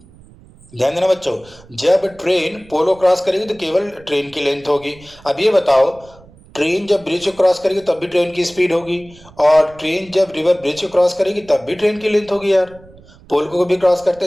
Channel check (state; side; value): noise; right; rumble, 24 dB below the sound